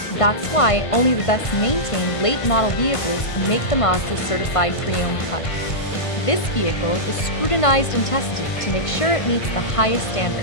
That's why only the best maintained late model vehicles make the Mazda certified pre-owned cut. This vehicle is scrutinized and tested to make sure it meets the highest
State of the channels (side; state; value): right; late; 1.5 ms